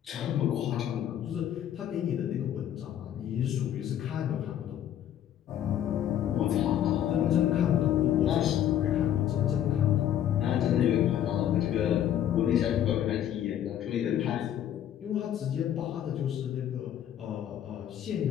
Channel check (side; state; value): right; quieter; 10.7 dB